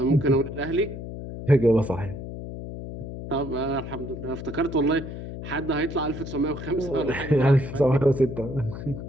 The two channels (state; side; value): noise; left; hum, 9 dB below the sound